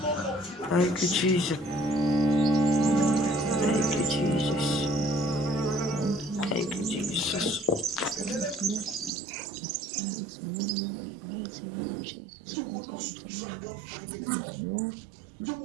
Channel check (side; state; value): left; drops out; at 9.1 s